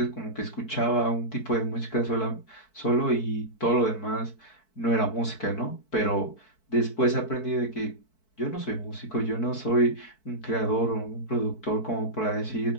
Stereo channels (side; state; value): right; late; 4.6 ms